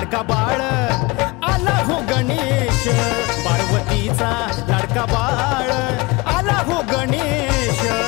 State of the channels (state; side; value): quieter; right; 24.2 dB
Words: बाळ आला हो गणेश, पार्वतीचा लाडका बाळ आला हो गणेश,